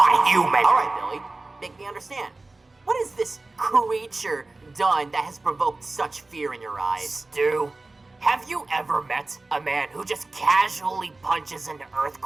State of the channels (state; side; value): quieter; left; 3.2 dB